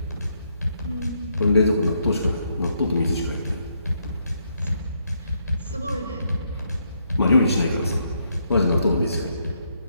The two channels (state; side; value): inverted; both; correlation -0.76